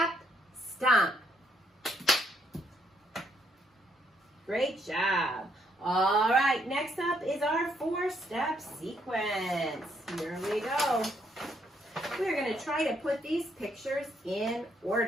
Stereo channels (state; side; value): normal; both; correlation 0.73